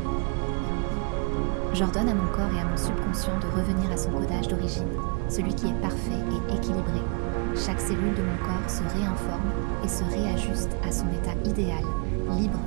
J'ordonne à mon corps et à mon subconscient de revenir à son codage d'origine, celui qui est parfait et équilibré. Chaque cellule de mon corps se réinforme et se réajuste à son état idéal, libre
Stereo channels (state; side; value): quieter; left; 33.9 dB